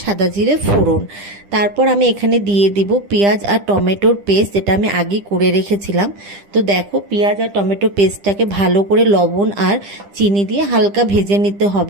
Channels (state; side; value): late; left; 10 ms